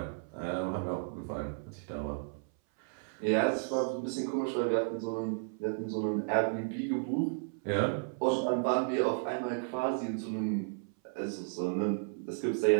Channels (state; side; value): silent; left; 56 dB below the other